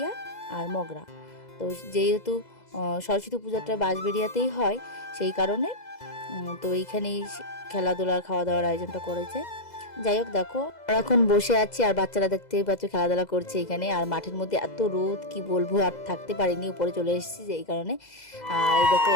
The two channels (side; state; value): right; late; 2.0 ms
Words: আর মগরা। তো যেহেতু সরস্বতী পূজাটা বাঁশবেড়িয়াতেই হয়, সেই কারণে তো এইখানেই খেলাধুলার খাওয়া দাওয়ার আয়োজনটা করেছে। যাই হোক, দেখো আমরা এখন বসে আছি আর বাচ্চারা দেখতেই পাচ্ছ খেলাধুলা করছে এখানে। আর মাঠের মধ্যে এত রোদ, কি বলবো, আর থাকতে পারিনি, উপরে চলে এসেছি এই কারণে। আর এই দেখো